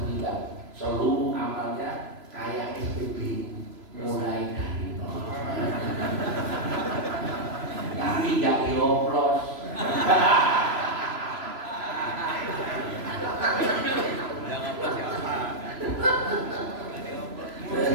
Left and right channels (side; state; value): left; late; 3.0 ms